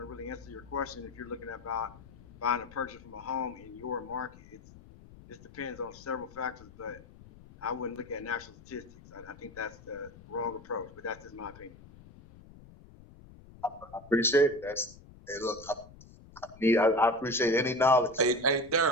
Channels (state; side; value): noise; left; rumble, 21 dB below the sound